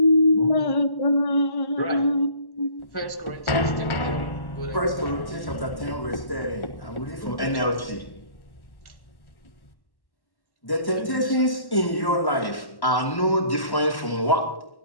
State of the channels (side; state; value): right; late; 1.1 ms